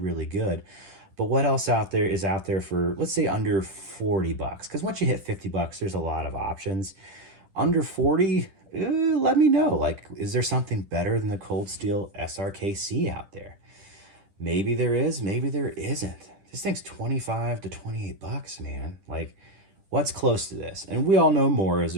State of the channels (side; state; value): left; late; 10 ms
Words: good. But what else is out there for, let's say, under 40 bucks? Because once you hit 50 bucks, there's a lot of options. Under 40, let me know. Like, is there something better than the Cold Steel SRK-C out there? Maybe there is, maybe there isn't. This thing's 25 to 28 bucks, man. Like, what's close to this? And we all know Moras